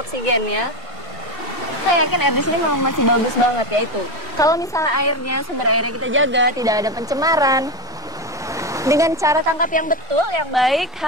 Saya yakin air di sini memang masih bagus banget ya itu. Kalau misalnya sumber airnya kita jaga, tidak ada pencemaran, dengan cara tangkap yang betul, yang baik,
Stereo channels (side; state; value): both; normal; correlation 0.15